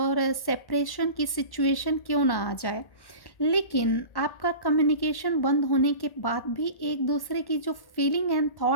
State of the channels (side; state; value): right; late; 1.1 ms